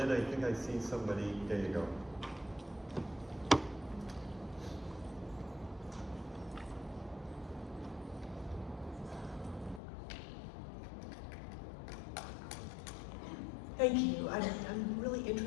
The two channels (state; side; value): drops out; right; at 9.8 s